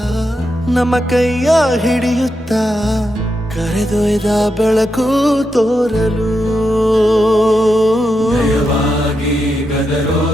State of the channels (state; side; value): normal; both; correlation 0.85